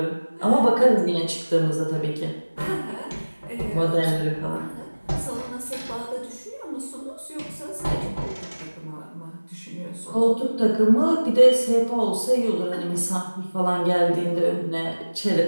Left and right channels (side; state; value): both; inverted; correlation -1.00